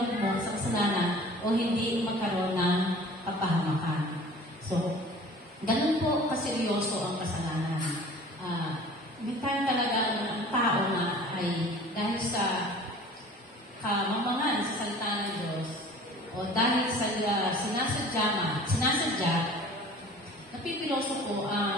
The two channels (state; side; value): normal; both; correlation 0.45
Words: sa kasalanan o hindi magkaroon ng kapahamakan. So, ganun po kaseryoso ang kasalanan. May time talaga ang tao na ay dahil sa kamamangan sa salita ng Diyos o dahil sa sinasadya, napipiloso po